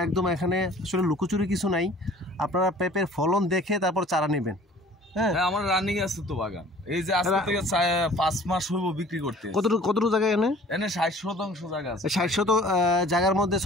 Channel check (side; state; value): both; normal; correlation 0.50